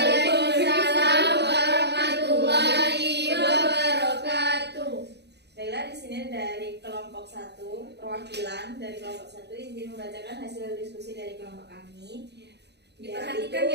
warahmatullahi wabarakatuh. Baiklah, di sini dari kelompok 1, perwakilan dari kelompok 1 izin membacakan hasil diskusi dari kelompok kami. Diperhatikan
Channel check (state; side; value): late; left; 0.49 ms